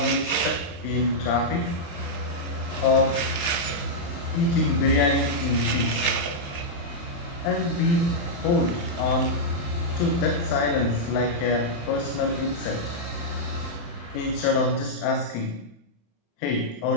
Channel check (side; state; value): right; late; 35 ms